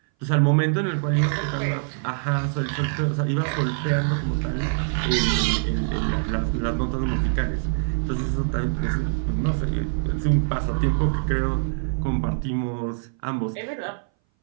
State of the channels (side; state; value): left; silent; 60 dB below the other